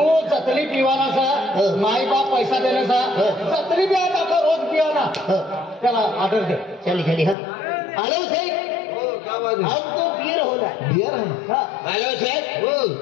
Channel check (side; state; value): right; drops out; at 7.4 s